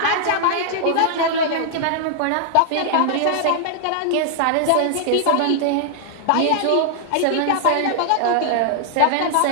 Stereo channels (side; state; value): both; different; correlation -0.01